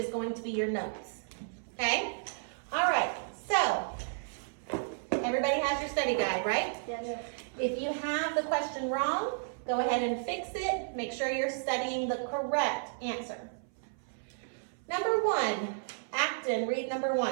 going to be your notes. Okay? All right, so everybody has your study guide, right? Yes. If you have the question wrong, go ahead and fix it. Make sure you're studying the correct answer. Number 1, Acton, read number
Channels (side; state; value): left; silent; 56 dB below the other